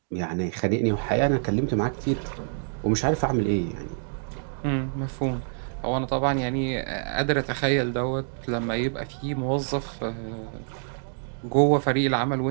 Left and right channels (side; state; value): left; silent; digital silence